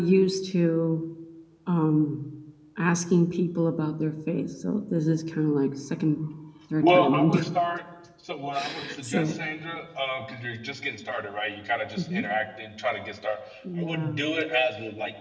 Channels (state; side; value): identical; both; correlation 1.00